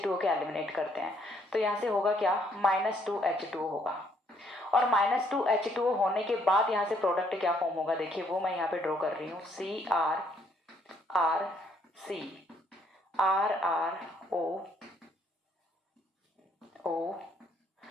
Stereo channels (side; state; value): both; normal; correlation 0.68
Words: के एलिमिनेट करते हैं, तो यहाँ से होगा क्या, -2H2O होगा। और -2H2O होने के बाद यहाँ से प्रोडक्ट क्या फॉर्म होगा, देखिए वो मैं यहाँ पे ड्रॉ कर रही हूँ, CrRC RrO